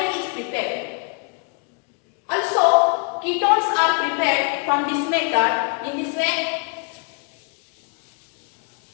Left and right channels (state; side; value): quieter; right; 38.0 dB